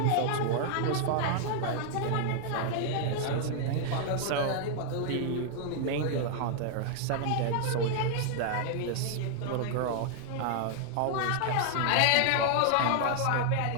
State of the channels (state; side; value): different; both; correlation 0.00